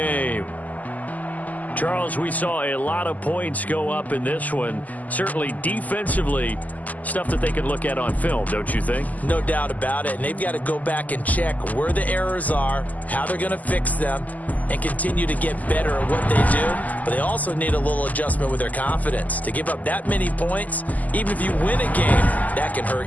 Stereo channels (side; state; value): right; late; 0.078 ms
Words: Charles, we saw a lot of points go up in this one. Certainly defensively, stuff that they can look at on film, don't you think? No doubt about it. And they've got to go back and check where the errors are, how they're going to fix them, and continue to get better at what they do. But they also need a little adjustment with their confidence. To give up that many points, even if you win a game, that can